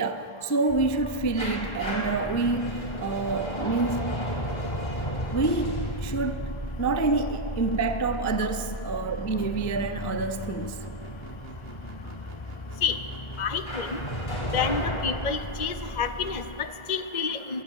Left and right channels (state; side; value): late; right; 1.4 ms